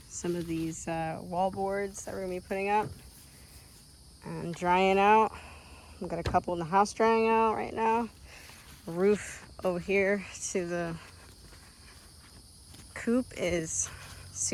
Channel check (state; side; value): identical; both; correlation 1.00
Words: some of these wall boards that we're gonna be putting up and drying out. We've got a couple in the house drying out right now. The roof over here to the coop is